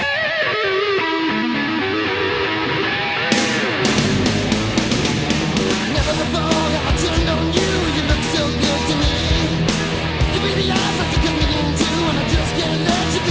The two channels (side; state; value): both; identical; correlation 1.00